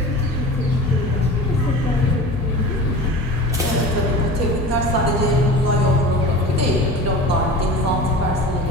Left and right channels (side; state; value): both; normal; correlation 0.35